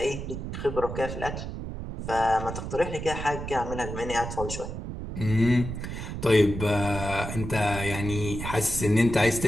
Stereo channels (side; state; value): right; noise; rumble, 7 dB below the sound